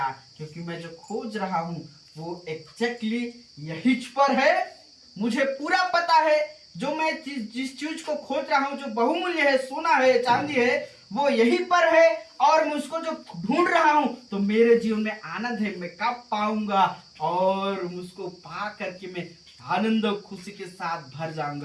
क्योंकि मैं जो खोज रहा हूं वो एग्जैक्टली यही पर है। मुझे पूरा पता है जो मैं जिस चीज को खोज रहा हूं, जो बहुमूल्य है, सोना है, चांदी है, वो यहीं पर है, और मैं उसको जो ढूंढ रहा हूं तो मेरे जीवन में आनंद है। मैं कब पाऊंगा और उसको पा करके मैं आनंद और खुशी के साथ भर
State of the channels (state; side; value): identical; both; correlation 1.00